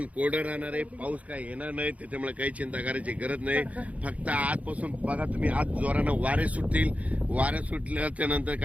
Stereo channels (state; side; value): late; left; 0.068 ms